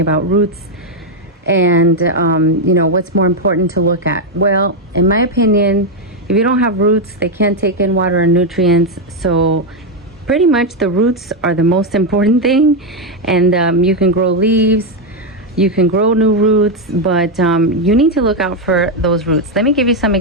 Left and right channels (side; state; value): both; normal; correlation 0.03